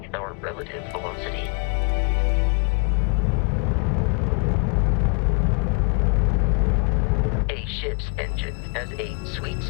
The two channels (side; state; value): right; quieter; 36.7 dB